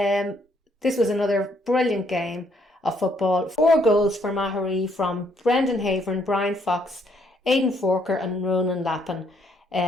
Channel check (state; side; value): normal; both; correlation 0.70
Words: was another brilliant game of football. 4 goals for Maghery from Brendan Havern, Brian Fox, Aidan Forker and Ronan Lappin.